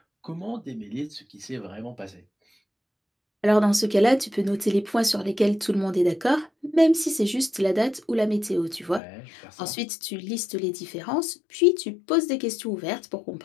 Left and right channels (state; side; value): drops out; right; at 9.0 s